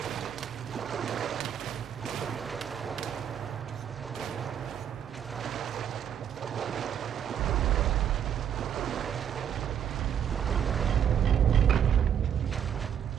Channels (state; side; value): quieter; left; 9.0 dB